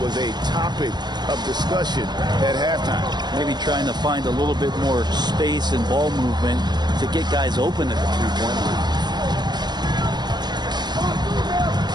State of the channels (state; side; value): late; left; 0.21 ms